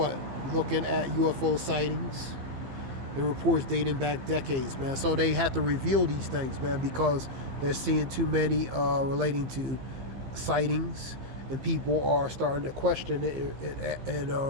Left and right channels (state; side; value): late; left; 15 ms